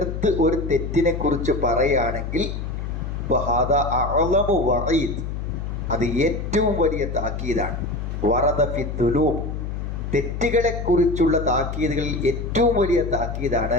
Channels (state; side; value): noise; left; hum, 5 dB below the sound